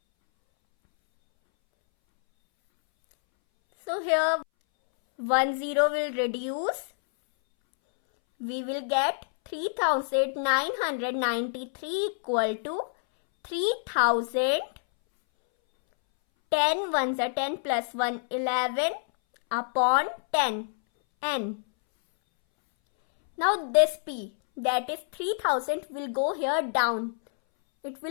So here 1 0 will reduce. We will get 3993 equal to 3000. 10 ones are 10 plus 1 11 upon 10 N. Now this P, that is 3000, will go here down. It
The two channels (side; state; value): right; silent; 60 dB below the other